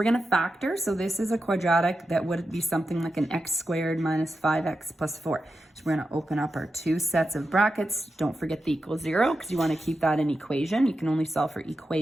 going to factor. So this is a quadratic that would be something like an x squared minus 5x plus 4. So we're going to open up our two sets of brackets. Don't forget the equals 0 because you want to keep that in equation. You can only solve for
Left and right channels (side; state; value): both; normal; correlation 0.89